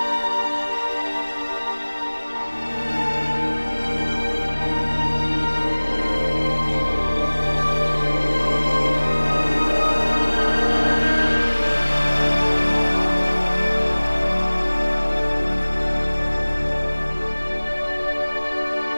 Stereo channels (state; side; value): inverted; both; correlation -1.00